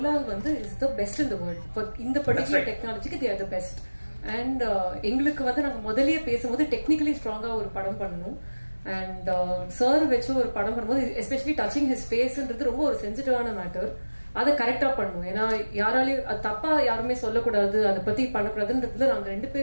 வந்து is the best in the world for இந்த பர்టిక్యులர் டெக்னாலஜிக்கு they are the best. And எங்களுக்கு வந்து நாங்க முதல்லயே பேசும்போது டெக்னிக்கலி ஸ்ட்ராங்கா ஒரு படம் பண்ணணும். அண்ட் சார் வச்சு ஒரு படம் பண்ணும்போது எஸ்பெஷலி டச்சிங் ஹிஸ் ஃபேஸ்ன்றது ரொம்ப ஒரு சென்சிட்டிவான மேட்டர். அதை கரெக்டா பண்ணணும். ஏன்னா யாராலையும் அது தப்பா யாருமே சொல்லக்கூடாது, அதை பத்தி பண்ணக்கூடாதுன்றதுல நாங்க 2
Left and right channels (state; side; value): inverted; both; correlation -1.00